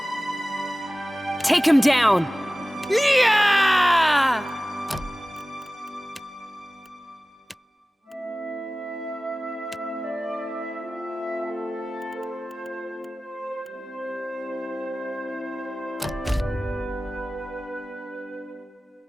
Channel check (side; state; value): both; normal; correlation 0.97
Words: Take him down! Yeah!